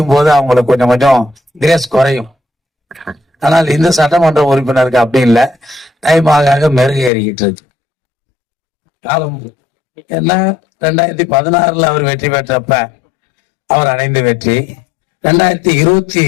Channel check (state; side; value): drops out; right; at 7.1 s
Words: போது அவங்களுக்கு கொஞ்சம் கொஞ்சம் கிரேஸ் குறையும். ஆனால் இந்த சட்டமன்ற உறுப்பினருக்கு அப்படி இல்லை, டைம் ஆக மெருகேறிக்கிட்டு இருக்கு. காலம் என்ன, 2016 அவர் வெற்றி பெற்றப்ப அவர் அடைந்த வெற்றி,